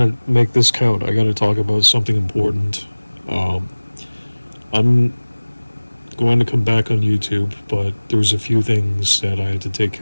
to make this count. I got to talk about something important. I'm going to come back on YouTube, but there's a few things that I had to take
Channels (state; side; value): inverted; both; correlation -1.00